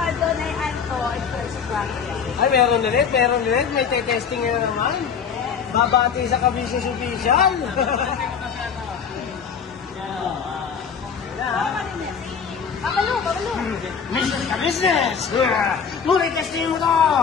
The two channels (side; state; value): right; quieter; 6.7 dB